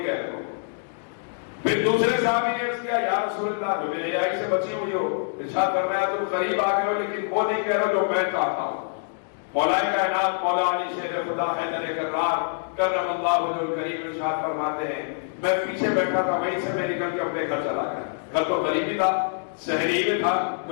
کہہ رہے ہو. پھر دوسرے صحابی نے عرض کیا یا رسول اللہ جو بے حیائی سے بچی ہوئی ہو, ارشاد فرمایا تم قریب آ گئے ہو لیکن وہ نہیں کہہ رہے جو میں چاہتا ہوں. مولا کائنات مولا علی شیر خدا حیدر کرار کرم اللہ وجہ الکریم ارشاد فرماتے ہیں میں پیچھے بیٹھا تھا, وہیں سے میں نکل کے اپنے گھر چلا گیا. گھر تو قریبی تھا, شہری میں تھا,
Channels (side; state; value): right; silent; digital silence